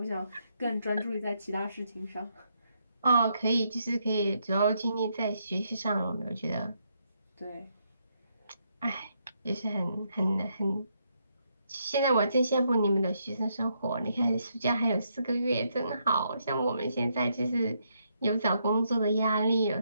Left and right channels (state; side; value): inverted; both; correlation -0.77